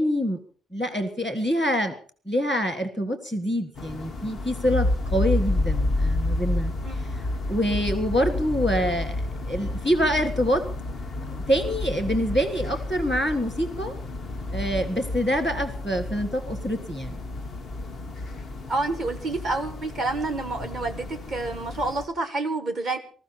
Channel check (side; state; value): both; normal; correlation 0.77